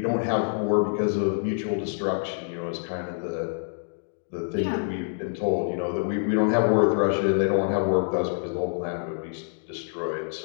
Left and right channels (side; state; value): right; silent; digital silence